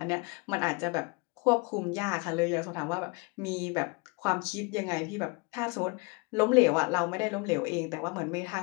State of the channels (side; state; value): right; quieter; 29.6 dB